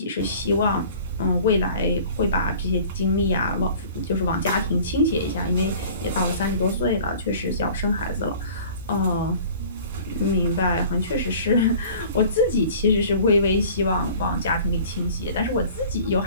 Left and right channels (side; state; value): both; inverted; correlation -0.47